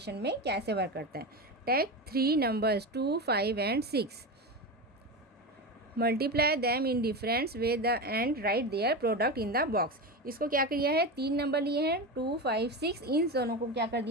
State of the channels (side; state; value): both; normal; correlation 0.21